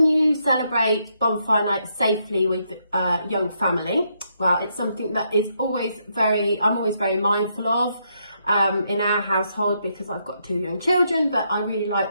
you celebrate bonfire night safely with a young family? Well, it's something that is I'm always very mindful of in our household because I've got 2 young children, but I really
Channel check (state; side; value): inverted; both; correlation -0.77